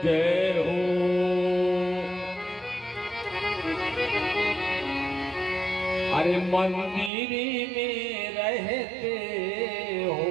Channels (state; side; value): drops out; left; at 7.1 s